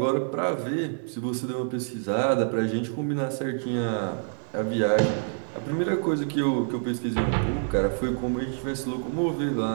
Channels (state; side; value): silent; left; digital silence